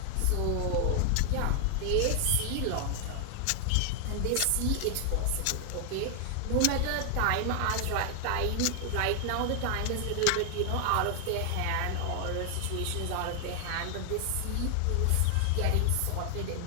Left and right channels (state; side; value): different; both; correlation 0.00